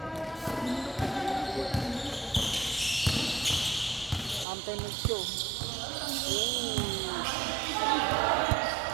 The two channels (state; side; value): drops out; left; at 4.5 s